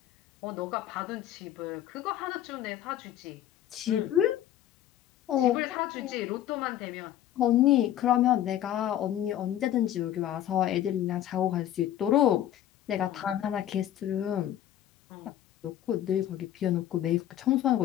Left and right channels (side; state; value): right; quieter; 12.0 dB